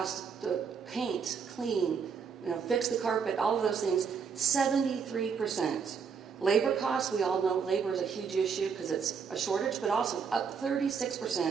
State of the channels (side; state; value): left; quieter; 6.2 dB